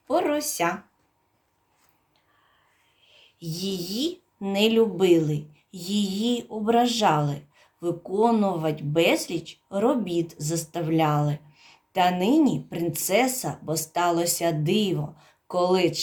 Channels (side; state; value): both; identical; correlation 1.00